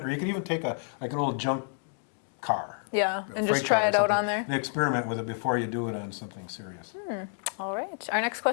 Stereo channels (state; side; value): silent; right; 58 dB below the other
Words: or you could even take an old junk car. Yeah, a and just freight try car or it out something, on there. and experiment with it before you do it on something serious. All right. Our next